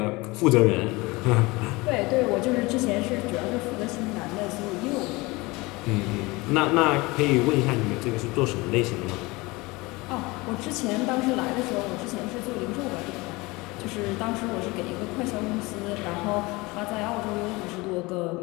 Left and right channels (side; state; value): right; quieter; 23.3 dB